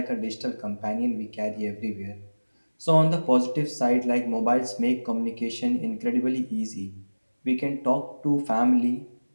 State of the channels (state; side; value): inverted; both; correlation -1.00